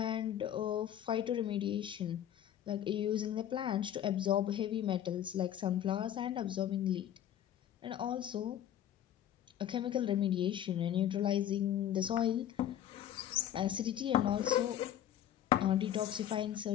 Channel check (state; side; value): quieter; right; 10.9 dB